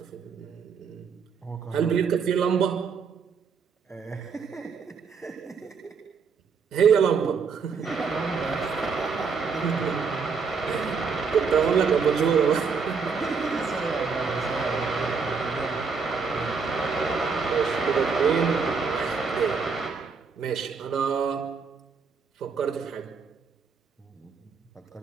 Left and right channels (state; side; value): quieter; left; 5.5 dB